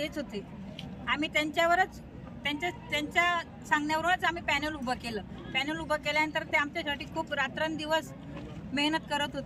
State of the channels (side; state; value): both; identical; correlation 1.00